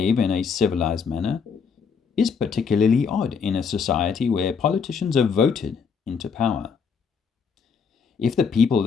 in a civilized manner is particularly odd in a society where politicians are voted into power. If the people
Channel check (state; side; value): quieter; right; 6.0 dB